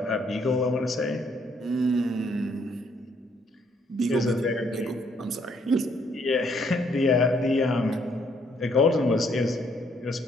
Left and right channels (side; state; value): both; normal; correlation 0.69